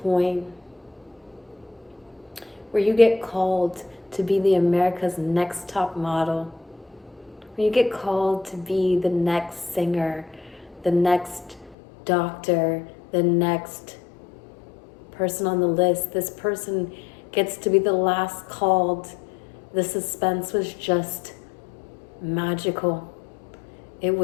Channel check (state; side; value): drops out; right; at 11.8 s